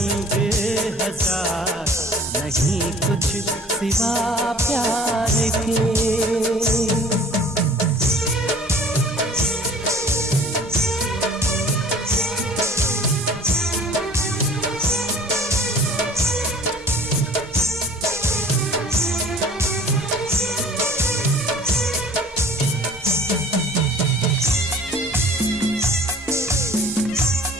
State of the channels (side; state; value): both; normal; correlation 0.48